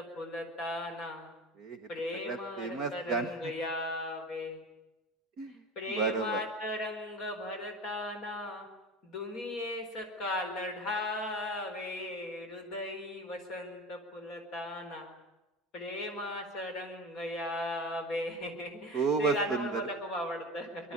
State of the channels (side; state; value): both; normal; correlation 0.31